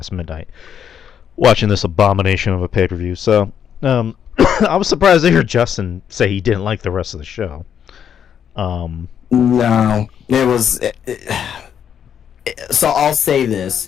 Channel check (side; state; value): right; quieter; 8.6 dB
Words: midnight watching this abomination of a pay-per-view. So I was surprised to hear Justin say he didn't like the rest of the show. No, it was. So I'll say this: